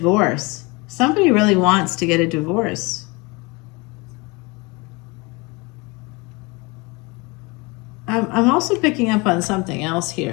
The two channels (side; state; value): right; quieter; 26.4 dB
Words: Somebody really wants to get a divorce. I'm also picking up on something else